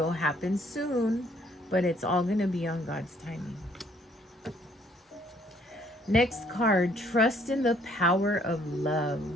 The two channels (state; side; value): normal; both; correlation 0.63